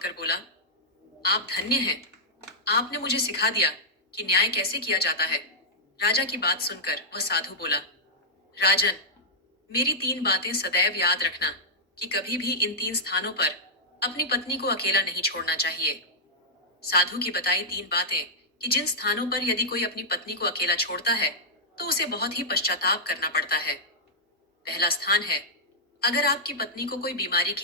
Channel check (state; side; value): normal; both; correlation -0.10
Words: बोला, आप धन्य हैं। आपने मुझे सिखा दिया कि न्याय कैसे किया जाता है। राजा की बात सुनकर वह साधु बोला, राजन, मेरी 3 बातें सदैव याद रखना कि कभी भी इन 3 स्थानों पर अपनी पत्नी को अकेला नहीं छोड़ना चाहिए। साधु की बताई 3 बातें कि जिन स्थानों पर यदि कोई अपनी पत्नी को अकेला छोड़ता है तो उसे बहुत ही पश्चाताप करना पड़ता है। पहला स्थान है, अगर आपकी पत्नी को कोई बीमारी